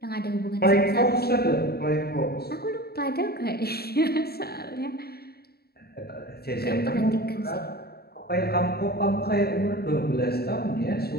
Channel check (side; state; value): right; late; 0.46 ms